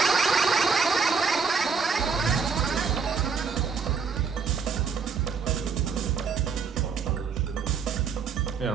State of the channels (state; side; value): quieter; left; 5.6 dB